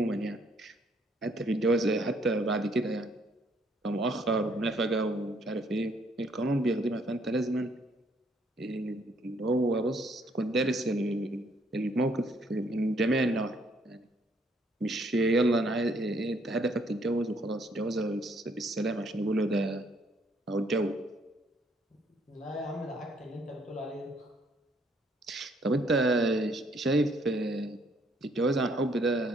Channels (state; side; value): normal; both; correlation 0.67